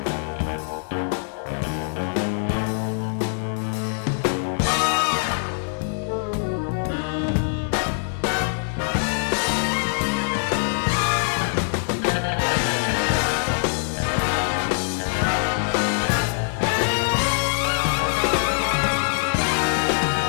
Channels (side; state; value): right; silent; 63 dB below the other